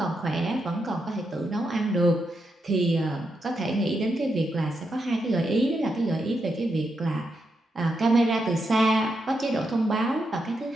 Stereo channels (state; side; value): normal; both; correlation 0.84